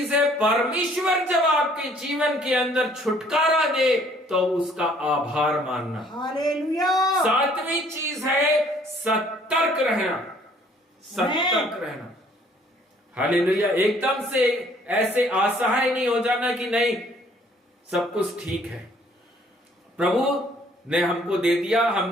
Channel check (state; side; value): normal; both; correlation 0.60